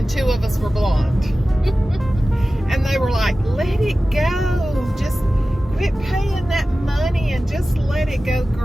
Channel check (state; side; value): normal; both; correlation 0.96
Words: 2 of us were blonde. And they were like, let it go. Just quit paying that money and just let it go